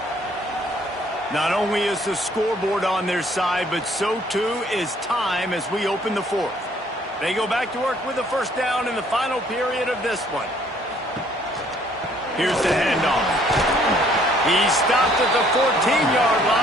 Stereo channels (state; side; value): normal; both; correlation 0.62